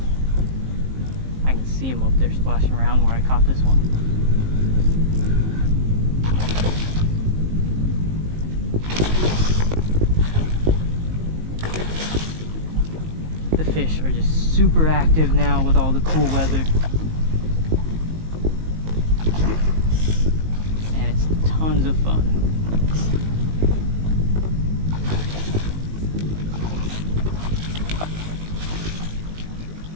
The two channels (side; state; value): left; late; 19 ms